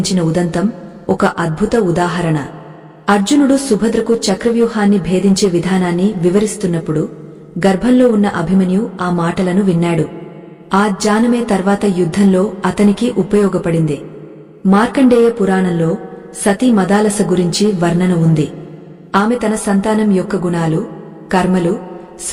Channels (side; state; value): both; identical; correlation 1.00